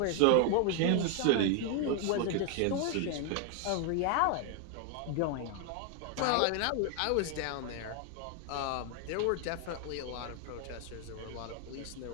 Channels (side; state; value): both; different; correlation 0.01